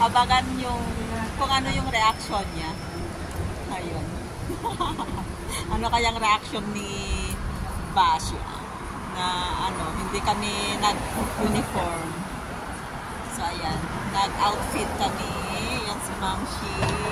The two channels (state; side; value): identical; both; correlation 1.00